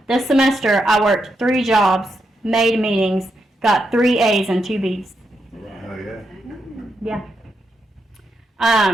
This semester, I worked 3 jobs, made meetings, got 3 A's and 2 B's. Oh, yeah. Yeah.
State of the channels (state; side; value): normal; both; correlation 0.83